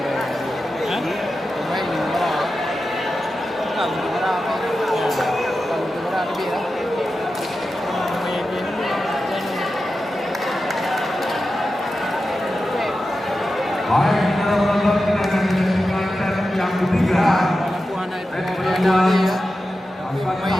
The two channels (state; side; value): normal; both; correlation 0.92